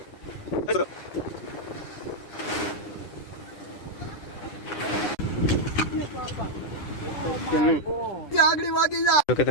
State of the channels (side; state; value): right; late; 10 ms